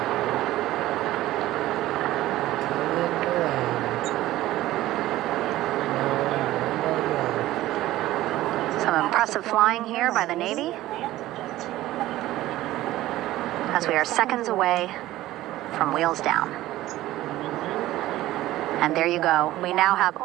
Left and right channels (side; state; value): left; quieter; 15.7 dB